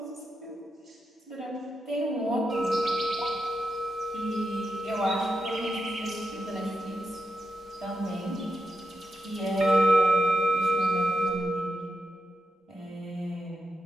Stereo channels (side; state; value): both; normal; correlation 0.86